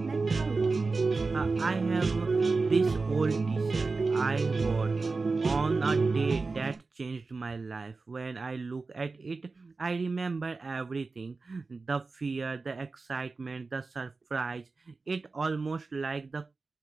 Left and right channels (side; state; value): left; quieter; 4.0 dB